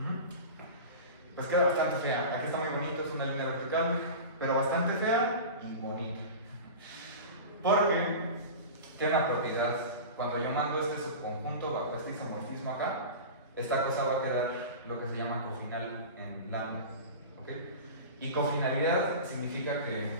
Pues queda bastante fea. Aquí está muy bonito, es una línea vertical, pero bastante fea y bonita. Porque tiene una propiedad. Cuando yo mando este subconjunto bajo este isomorfismo acá, esta cosa va a quedar lo que se llama cofinal en lambda. ¿Ok? Y cofinalidad significa que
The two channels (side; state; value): both; inverted; correlation -0.31